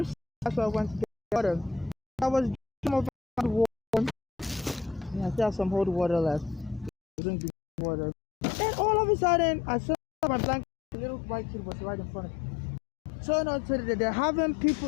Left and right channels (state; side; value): drops out; right; at 6.9 s